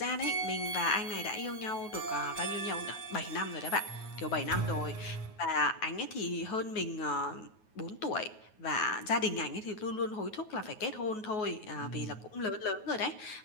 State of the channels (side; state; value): right; late; 9.3 ms